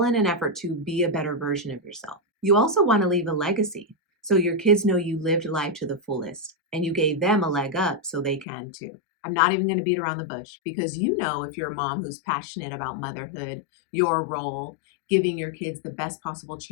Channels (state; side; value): drops out; right; at 8.5 s